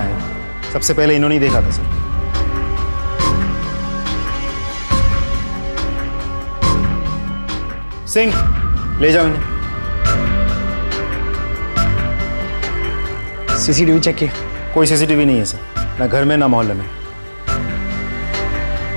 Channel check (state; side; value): inverted; both; correlation -1.00